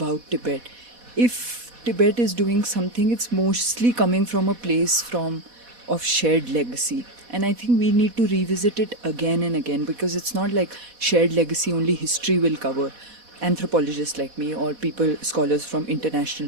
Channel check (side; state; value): left; late; 4.1 ms